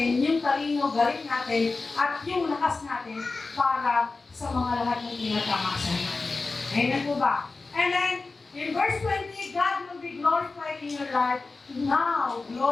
yung talino, galing natin, at yung lakas natin para sa mga lahat ng tinatamasa natin. Amen po ba? And then, in verse 20, God will be glorified in your life. Now,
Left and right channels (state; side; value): quieter; right; 3.8 dB